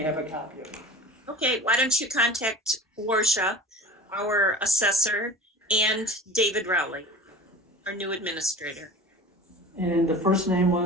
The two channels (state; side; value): normal; both; correlation 0.37